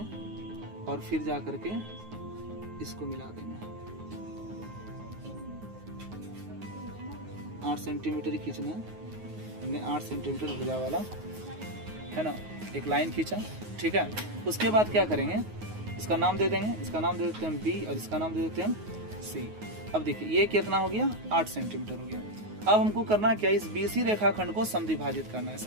और फिर जा करके इसको मिला देंगे। 8 सेंटीमीटर ही खींचना है हमने, 8 सेंटीमीटर भुजा वाला, है ना, एक लाइन खींचा, ठीक है। उसके बाद क्या करेंगे, इसका नाम दे देंगे, इसका नाम दे देते हैं B और इसका नाम दे देते हैं C। अब देखिए ये कितना हो गया, 8 सेंटीमीटर हो गया। अब हमको करना क्या, इस BC रेखाखंड को समद्विभाजित करना है।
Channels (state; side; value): late; left; 9.5 ms